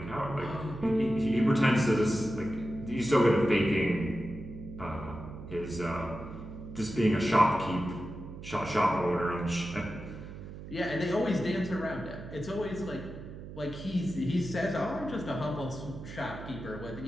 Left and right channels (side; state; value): right; noise; hum, 12 dB below the sound